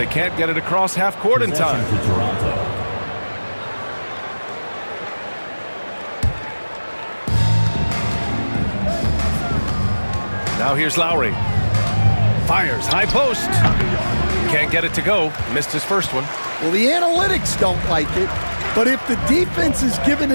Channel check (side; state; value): both; inverted; correlation -1.00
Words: can't get it across half court in time. Now here's Lowry. Fires, high post. Can't get it to go. Missed his first one. Well, the analytics don't like it, but if the defense is giving